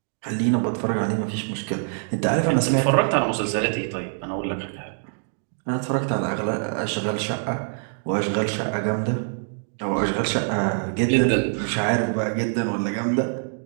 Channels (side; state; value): left; silent; 62 dB below the other